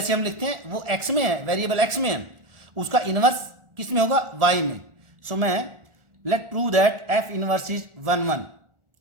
हम लिखते हैं वो x में है, वेरिएबल x में है। उसका इनवर्स किस में होगा, y में. सो मैं let prove that f inverse is 1 1.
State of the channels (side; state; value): left; late; 1.4 ms